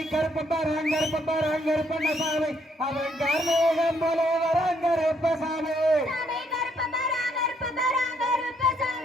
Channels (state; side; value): normal; both; correlation 0.70